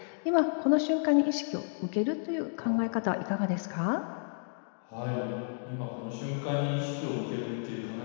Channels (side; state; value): right; silent; digital silence